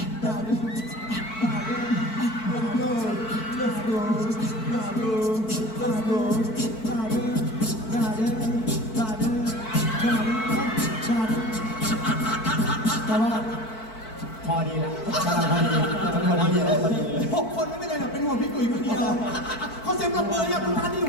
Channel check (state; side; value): late; right; 4.5 ms